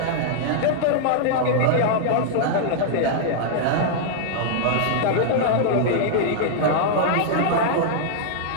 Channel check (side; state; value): both; different; correlation -0.02